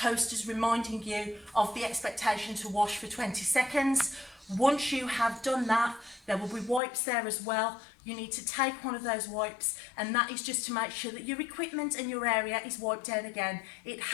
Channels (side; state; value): right; drops out; at 6.8 s